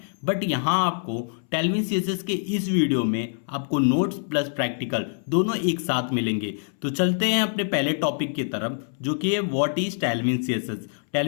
बट यहाँ आपको टेलविन सीएसएस के इस वीडियो में आपको नोट्स प्लस प्रैक्टिकल दोनों एक साथ मिलेंगे। तो चलते हैं अपने पहले टॉपिक की तरफ, जो कि है what is Tailwind CSS.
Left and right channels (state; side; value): silent; right; 62 dB below the other